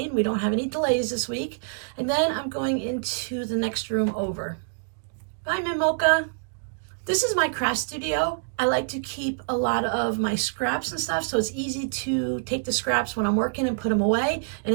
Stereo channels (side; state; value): left; silent; digital silence